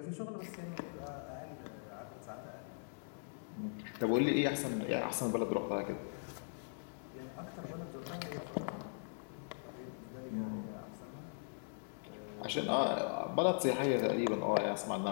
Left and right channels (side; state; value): right; silent; digital silence